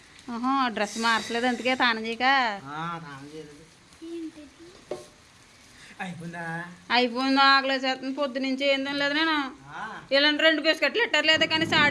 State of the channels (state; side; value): identical; both; correlation 1.00